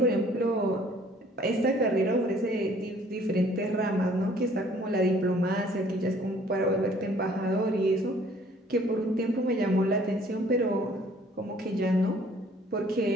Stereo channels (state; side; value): normal; both; correlation 0.57